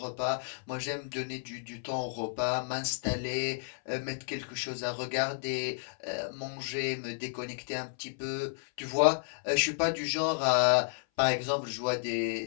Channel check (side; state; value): right; silent; 57 dB below the other